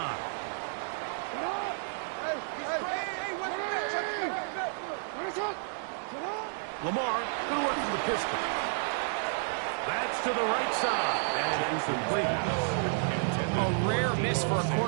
Lamar going to work from the pistol. That's to the right side, and incomplete. A rare miss for a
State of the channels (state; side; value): silent; left; digital silence